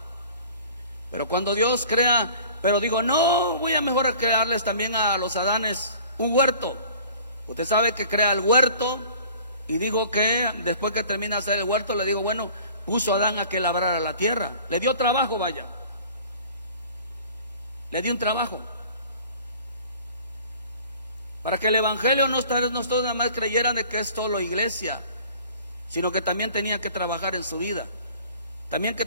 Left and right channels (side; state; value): both; inverted; correlation -0.48